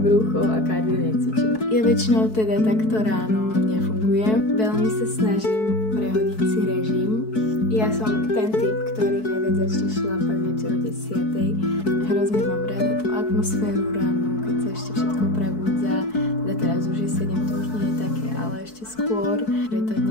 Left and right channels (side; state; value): right; late; 4.6 ms